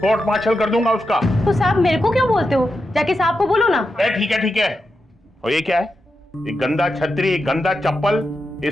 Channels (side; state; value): both; normal; correlation 0.88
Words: कोर्ट मार्शल कर दूंगा उसका। तो साहब मेरे को क्यों बोलते हो? जाके साहब को बोलो ना। ठीक है ठीक है। और ये क्या है? ये गंदा छतरी, गंदा चप्पल, ये